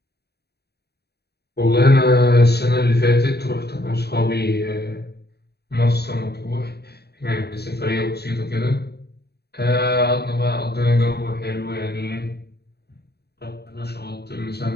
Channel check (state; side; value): late; right; 0.47 ms